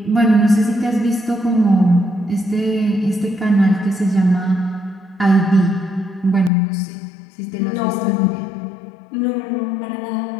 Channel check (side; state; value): right; drops out; at 6.5 s